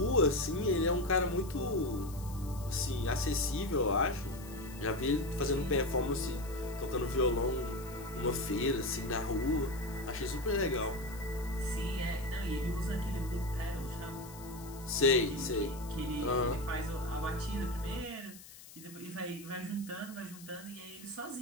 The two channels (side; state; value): left; noise; hiss, 18 dB below the sound